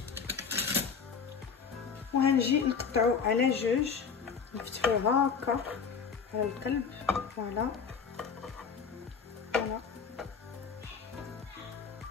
وغنجي نقطعو على جوج، نفتحوه هكا على القلب. فوالا فوالا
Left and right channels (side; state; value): right; quieter; 6.1 dB